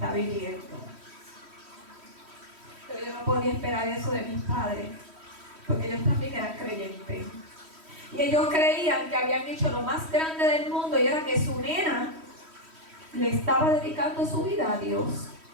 viviendo. Pero yo no podía esperar eso de mis padres, porque ellos también eran creyentes. Y ellos creían que habían hecho lo más grande del mundo, y era que su nena le estaba dedicando su vida a Dios.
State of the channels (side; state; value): left; late; 3.1 ms